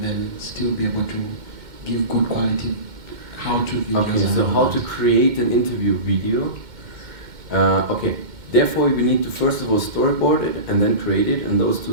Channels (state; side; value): late; left; 2.1 ms